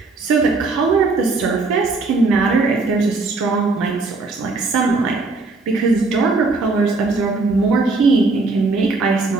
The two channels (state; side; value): quieter; left; 3.7 dB